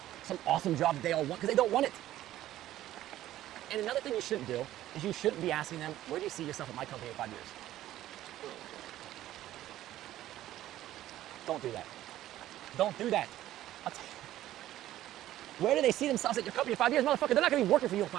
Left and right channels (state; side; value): quieter; left; 13.8 dB